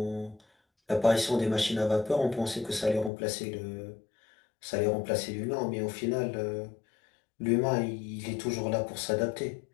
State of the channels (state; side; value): drops out; right; at 3.1 s